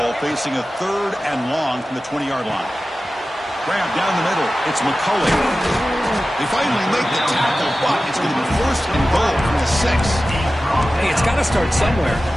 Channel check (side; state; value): both; normal; correlation 0.95